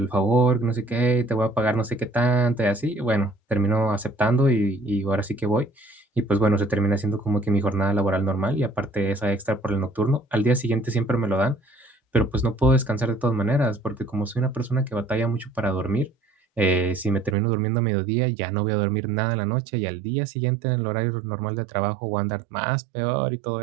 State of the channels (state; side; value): drops out; left; at 17.4 s